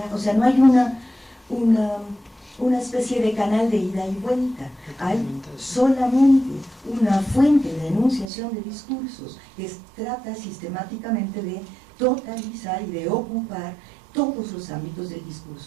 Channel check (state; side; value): drops out; left; at 8.2 s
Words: o sea, no hay una especie de canal de ida y vuelta. Hay solamente una fuente de enunciación de discursos que trata sistemáticamente de totalizar y de ocupar todos los ámbitos del